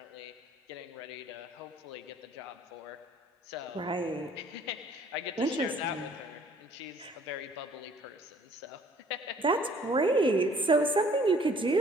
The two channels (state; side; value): normal; both; correlation 0.57